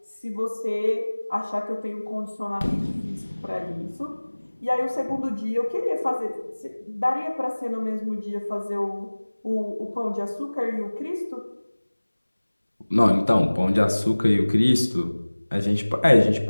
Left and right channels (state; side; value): inverted; both; correlation -1.00